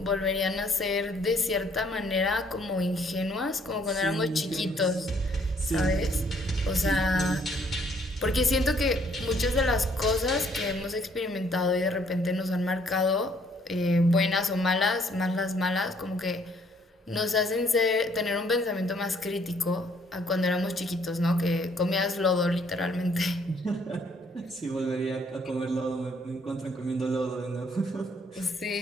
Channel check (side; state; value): both; normal; correlation 0.65